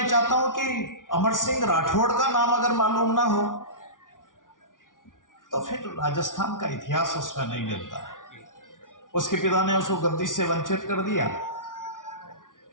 चाहता हूं कि अमर सिंह राठौड़ का नाम अगर मालूम ना हो तो फिर राजस्थान का इतिहास उसमें नहीं मिलता है। उसके पिता ने उसको गद्दी से वंचित कर दिया।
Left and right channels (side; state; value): right; late; 0.88 ms